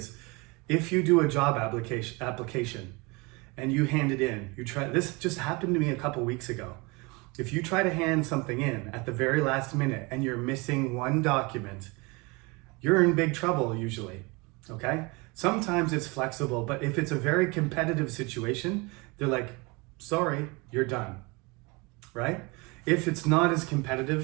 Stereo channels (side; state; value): left; quieter; 26.9 dB